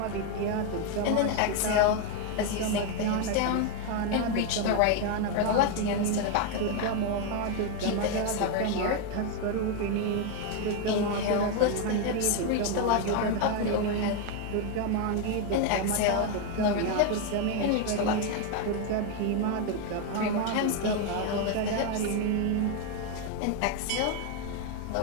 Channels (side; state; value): both; different; correlation 0.01